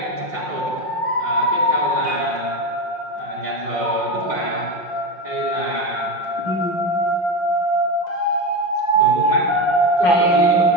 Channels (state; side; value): late; right; 5.6 ms